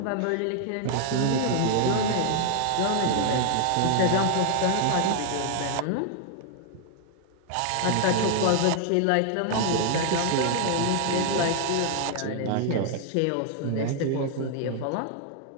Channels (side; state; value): both; different; correlation 0.00